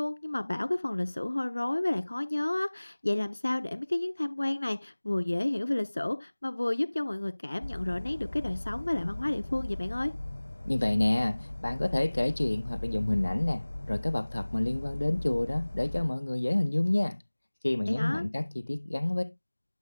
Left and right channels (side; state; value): both; inverted; correlation -1.00